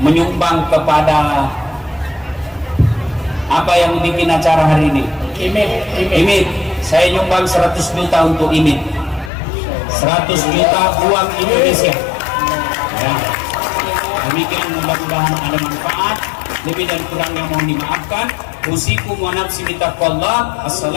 kepada apa yang bikin acara hari ini? Imit. Saya nyumbang 100 juta untuk Imit. 100 juta uang Indonesia. Ya. Demikian, mudah-mudahan ada manfaat. Lebih dan kurangnya mohon dimaafkan. Usikum wa nafsi bitaqwallah.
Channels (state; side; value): drops out; right; at 9.3 s